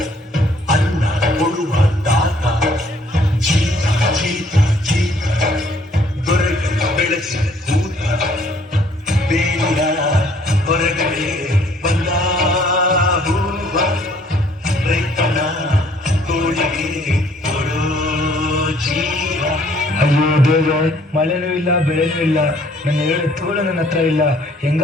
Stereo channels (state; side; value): normal; both; correlation 0.61